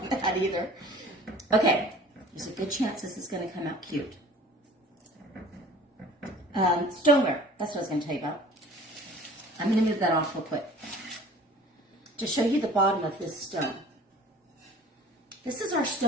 that either. Okay, there's a good chance this is going to come out cute. Stoneware, that's what I was going to tell you about. I'm going to move that off real quick to show you the bottom of this stone. This is our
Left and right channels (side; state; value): both; normal; correlation 0.47